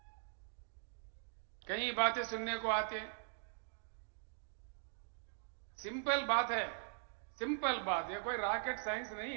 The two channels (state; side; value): silent; left; digital silence